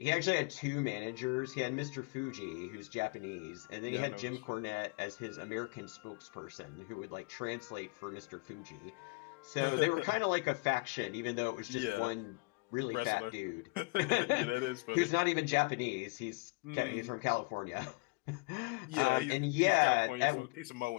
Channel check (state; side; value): quieter; right; 29.0 dB